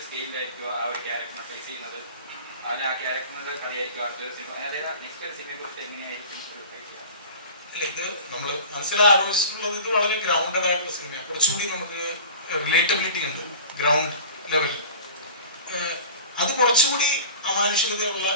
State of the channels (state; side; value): inverted; both; correlation -0.40